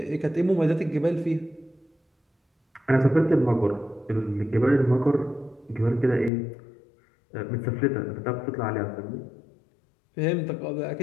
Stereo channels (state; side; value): drops out; right; at 6.3 s